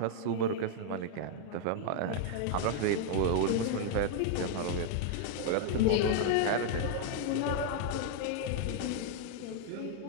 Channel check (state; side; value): different; both; correlation 0.00